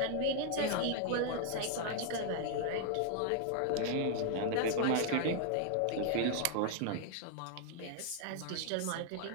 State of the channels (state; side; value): different; both; correlation 0.00